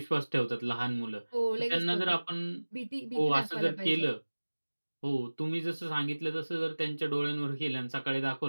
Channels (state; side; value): inverted; both; correlation -1.00